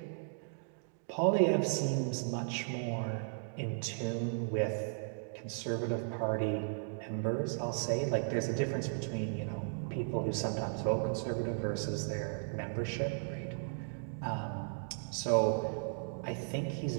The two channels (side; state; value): left; silent; digital silence